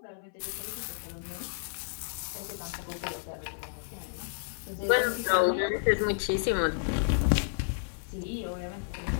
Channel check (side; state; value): right; silent; 57 dB below the other